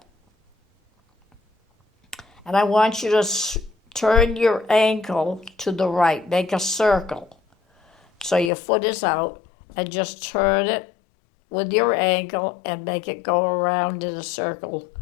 And I want you to turn your ankle to the right. Make a circle. So your foot is out, and just turn it with your ankle and make it go around in a circle.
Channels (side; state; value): right; drops out; at 8.5 s